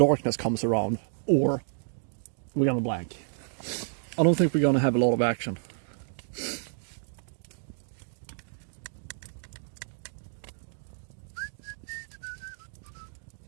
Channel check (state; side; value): silent; left; digital silence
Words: comes around, or we're gonna blank. I don't think we're gonna have a lot of action.